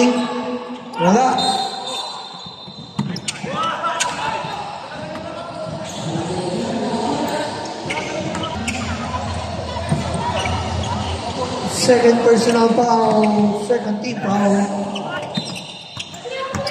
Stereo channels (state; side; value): identical; both; correlation 1.00